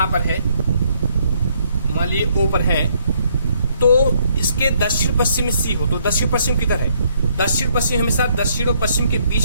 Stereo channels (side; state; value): both; inverted; correlation -0.69